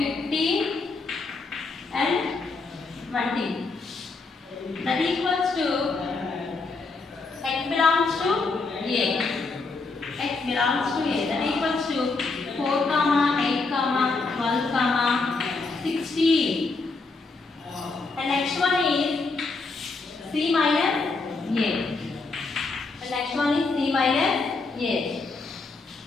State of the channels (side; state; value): right; quieter; 3.9 dB